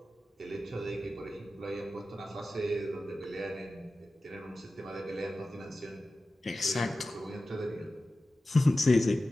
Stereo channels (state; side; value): normal; both; correlation 0.94